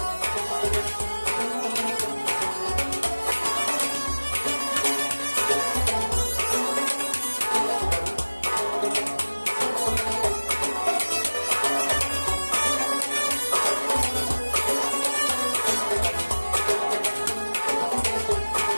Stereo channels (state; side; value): inverted; both; correlation -1.00